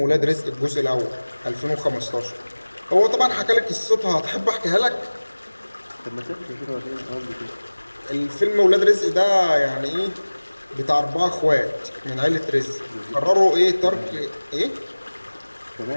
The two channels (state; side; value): inverted; both; correlation -1.00